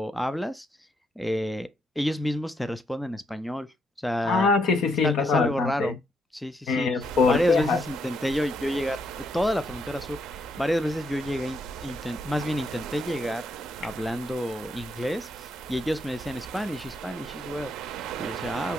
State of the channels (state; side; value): normal; both; correlation 0.76